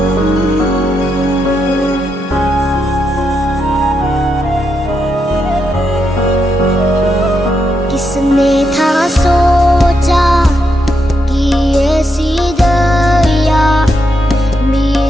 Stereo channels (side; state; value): both; normal; correlation 0.82